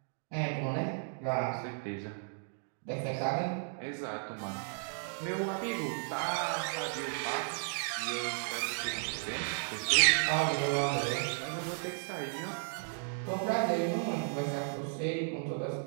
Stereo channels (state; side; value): silent; left; digital silence